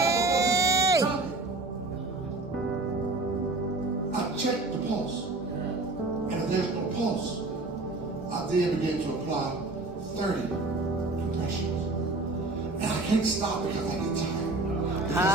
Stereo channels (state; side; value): quieter; left; 3.1 dB